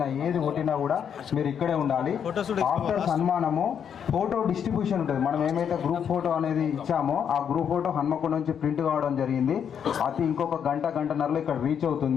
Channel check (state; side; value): quieter; right; 8.0 dB